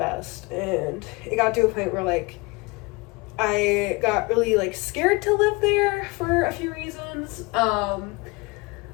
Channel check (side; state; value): right; quieter; 25.5 dB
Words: And it got to a point where like I got really like scared to live there for a few reasons.